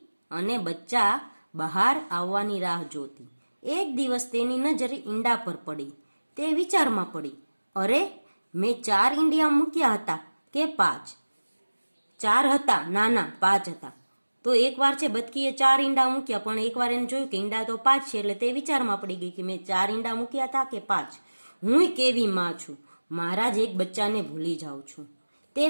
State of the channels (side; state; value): both; inverted; correlation -1.00